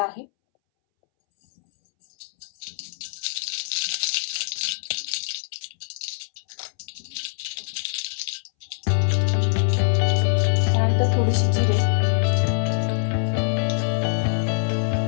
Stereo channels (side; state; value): right; silent; 63 dB below the other